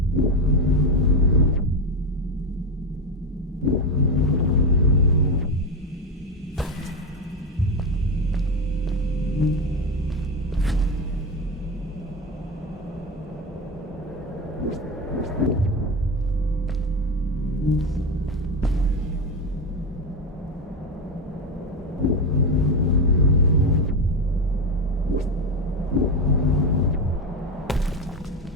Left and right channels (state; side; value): normal; both; correlation 0.16